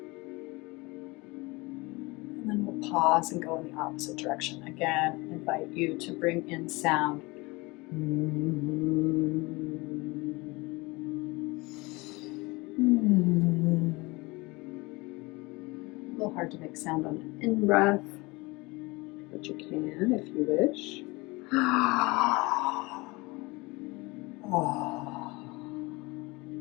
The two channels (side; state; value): right; quieter; 24.2 dB